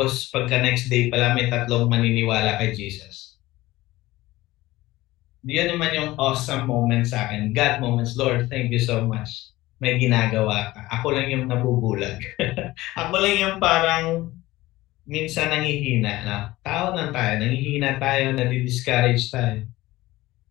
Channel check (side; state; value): right; quieter; 18.1 dB